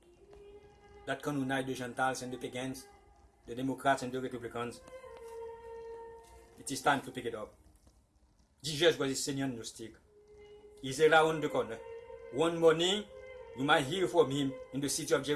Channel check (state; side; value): identical; both; correlation 1.00